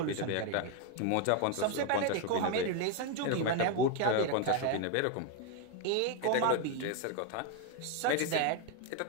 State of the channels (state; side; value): different; both; correlation 0.01